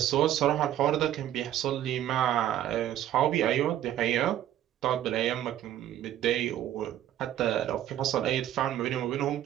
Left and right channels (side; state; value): left; quieter; 12.0 dB